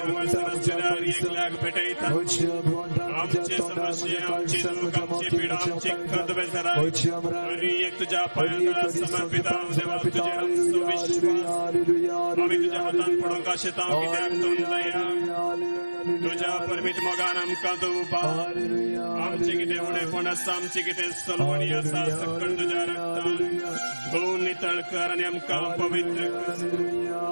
लाग भेटायचा. आमचे समस्या, आमची दुःख, आमची पीडा, आमची खंत बेसरा. आणि एक तुझ्या पायांना समर्पित आहोत देवा, तुझे आमचं विश्वास. आम्ही तुझ्या हातात पडून का शेतां कित्याक तूं दया. तुझ्या परमीत मोगान आमकां तूं उबा. आमचे कितें उणेपण आसा, आमची कितें सलवणी आसा, सकल तुझ्या रक्तान धुवन नितळ कर आनी आमकां पवित्र कर.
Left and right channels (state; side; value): inverted; both; correlation -1.00